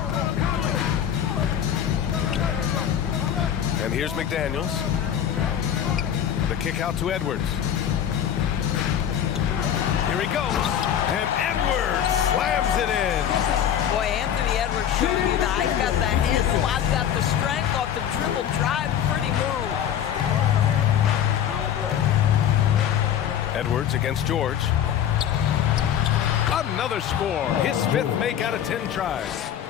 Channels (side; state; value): right; quieter; 9.6 dB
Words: And here's McDaniels. The kick out to Edwards. Here he goes. And Edwards slams it in. Boy, Anthony Edwards showing you that I've got the handle, I've got the strength off the dribble drive. Pretty move. Edwards against George. Another score. His 5th make out of 10 tries.